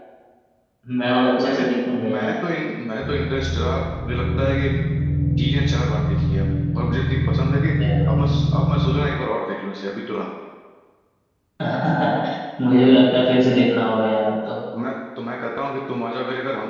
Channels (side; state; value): both; identical; correlation 1.00